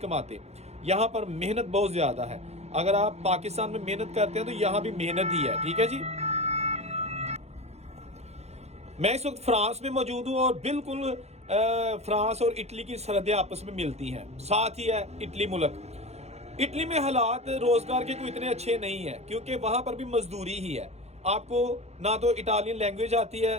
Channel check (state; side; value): late; left; 0.31 ms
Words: यहाँ पर मेहनत बहुत ज़्यादा है। अगर आप पाकिस्तान में मेहनत करते हैं तो यहाँ भी मेहनत ही है, ठीक है जी। मैं इस वक्त फ्रांस में मौजूद हूँ, और बिल्कुल फ्रांस और इटली की सरहदें आपस में मिलती हैं, साथ ही है इटली मुल्क। इटली में हालात रोज़गार के कोई इतने अच्छे नहीं है, क्योंकि वहाँ पर भी मजदूरी ही है। आपको ना तो इटालियन लैंग्वेज आती है,